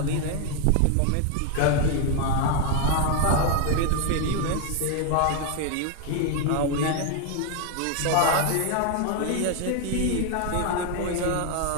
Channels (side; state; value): both; different; correlation 0.01